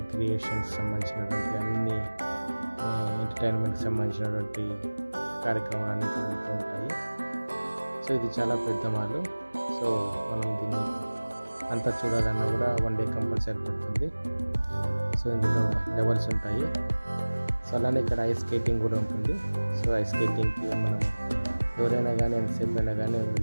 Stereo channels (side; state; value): both; inverted; correlation -1.00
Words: క్రియేషన్స్ సంబంధించినటువంటి అన్ని ఎంటర్టైన్మెంట్కి సంబంధించినటువంటి కార్యక్రమాలు అన్నీ జరుగుతూ ఉంటాయి. సో ఇది చాలా పెద్ద మాల్. సో మనం దీన్ని అంతా చూడాలన్నా కూడా 1 డే కంపల్సరీ పడుతుంది. సో ఇందులో లెవెల్స్ ఉంటాయి. సో అలానే ఇక్కడ ఐస్ స్కేటింగ్ కూడా ఉంటుంది. సో ఐస్ స్కేటింగ్కి మనం ఎవరైనా కానీ ఎంతసేపు అయినా కానీ